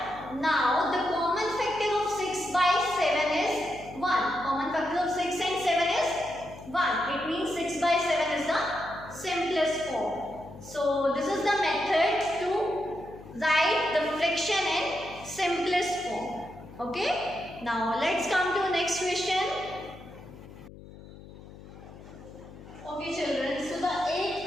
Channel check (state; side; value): noise; left; hum, 17 dB below the sound